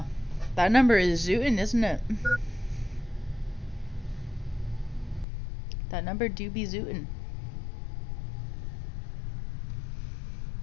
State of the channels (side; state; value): right; drops out; at 5.2 s